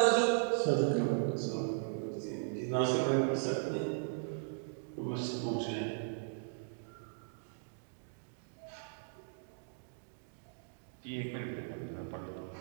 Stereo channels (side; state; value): left; silent; digital silence